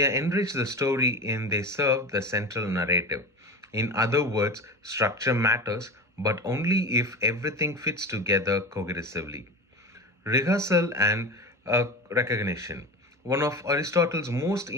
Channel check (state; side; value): normal; both; correlation 0.27